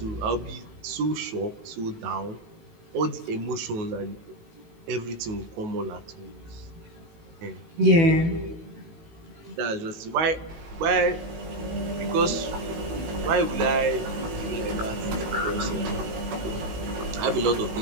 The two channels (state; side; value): late; left; 19 ms